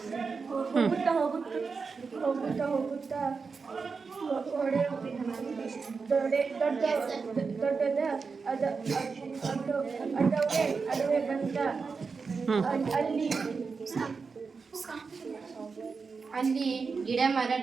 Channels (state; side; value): quieter; left; 4.9 dB